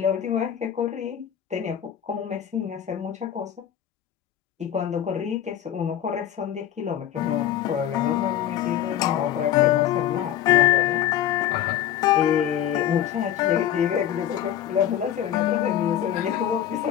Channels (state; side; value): quieter; right; 10.7 dB